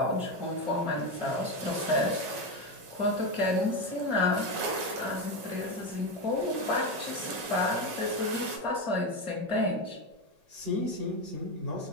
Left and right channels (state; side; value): late; left; 5.4 ms